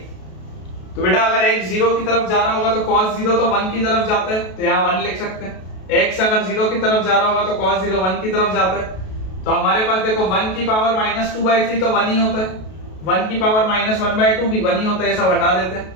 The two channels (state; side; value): late; right; 32 ms